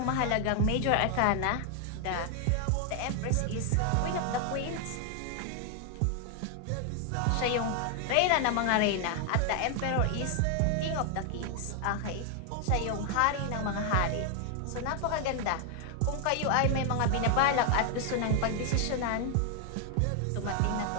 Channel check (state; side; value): different; both; correlation 0.00